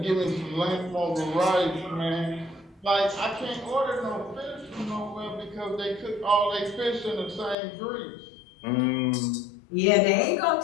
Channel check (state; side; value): drops out; right; at 7.6 s